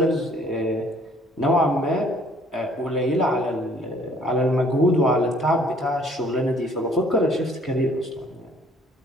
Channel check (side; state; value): both; normal; correlation 0.59